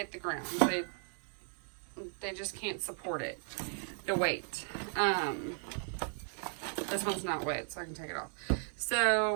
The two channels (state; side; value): silent; left; 54 dB below the other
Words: the ground. They just can't support it, the weight. This one's not wet, so I can take it off.